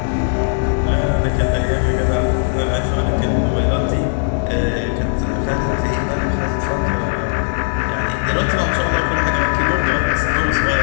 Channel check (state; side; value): silent; right; digital silence